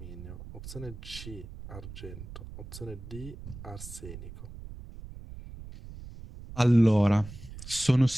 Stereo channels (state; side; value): noise; right; rumble, 13 dB below the sound